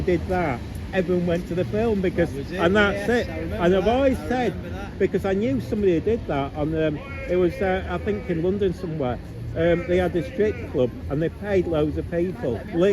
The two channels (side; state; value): both; identical; correlation 1.00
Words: did that, everyone went to the film because, That was it, and that's yes, it. I remember And I've that, always I said, remember that. because I knew somebody who did that on, it was, I think in London somewhere. They had a strip club and they paid loads of people,